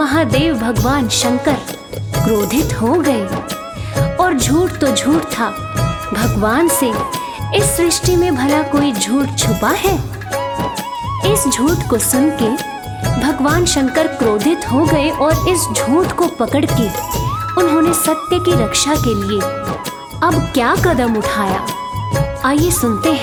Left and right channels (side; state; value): both; identical; correlation 1.00